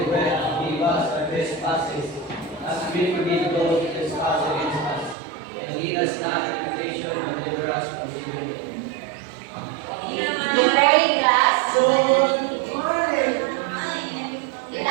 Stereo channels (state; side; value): drops out; left; at 5.2 s